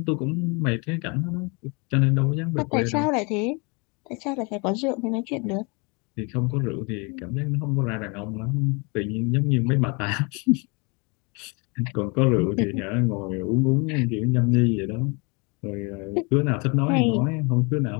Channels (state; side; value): quieter; right; 30.6 dB